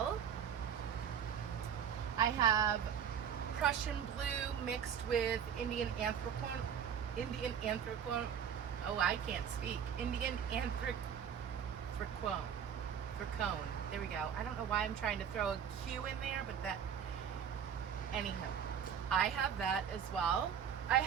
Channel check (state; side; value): quieter; left; 8.2 dB